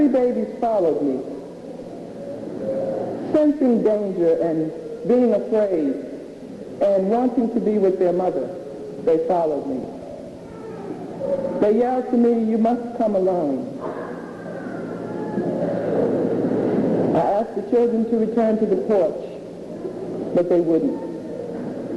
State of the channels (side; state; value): both; identical; correlation 1.00